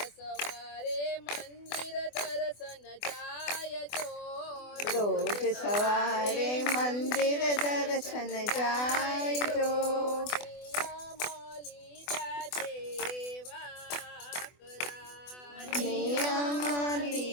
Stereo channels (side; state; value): right; late; 24 ms